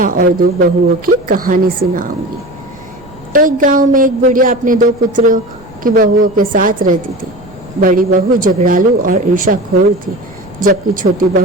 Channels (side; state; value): right; noise; rumble, 24 dB below the sound